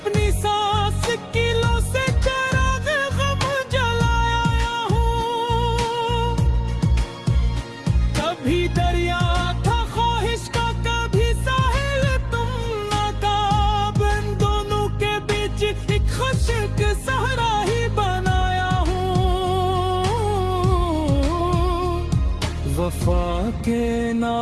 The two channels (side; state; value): both; identical; correlation 1.00